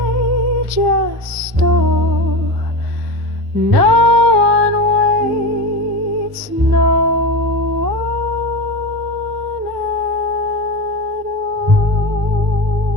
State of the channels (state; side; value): late; left; 1.1 ms